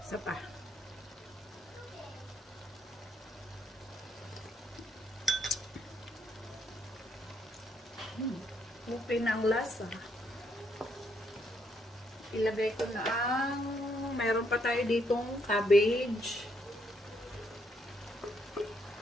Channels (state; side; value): normal; both; correlation 0.74